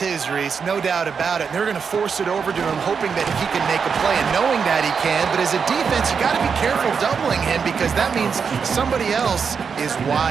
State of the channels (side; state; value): left; quieter; 6.1 dB